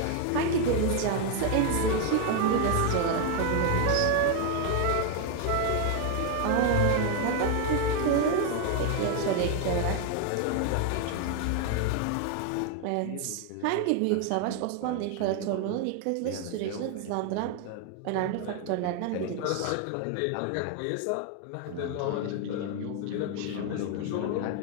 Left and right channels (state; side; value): different; both; correlation 0.00